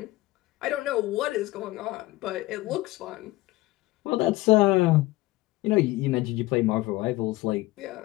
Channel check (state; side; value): quieter; right; 19.0 dB